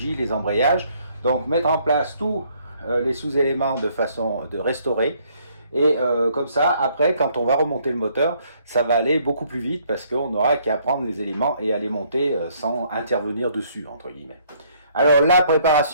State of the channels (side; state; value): both; inverted; correlation -0.65